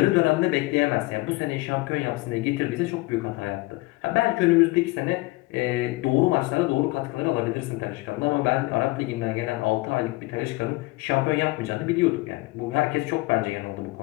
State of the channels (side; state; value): right; quieter; 22.0 dB